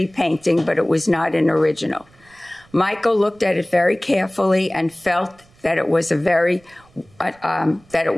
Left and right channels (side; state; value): right; noise; rumble, 30 dB below the sound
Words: painting, but it was not an original. Michael looked at it very carefully and felt that it was really